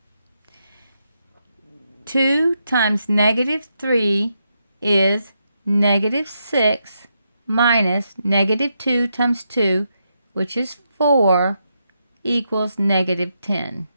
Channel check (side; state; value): both; inverted; correlation -0.82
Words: 2 times negative 3 is negative 6 minus negative 2 times 2, which is 4, equals negative 10.